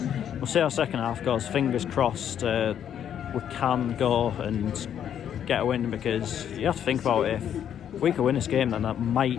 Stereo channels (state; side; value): quieter; right; 9.4 dB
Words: we'll see how second half goes. Fingers crossed we can go and get a win, because you have to think about it, if we could win this game, then that